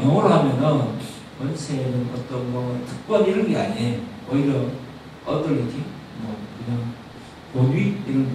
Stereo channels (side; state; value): both; identical; correlation 1.00